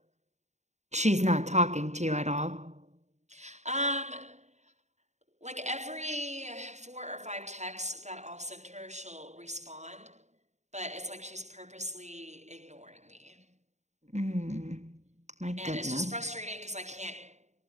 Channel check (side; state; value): left; late; 0.33 ms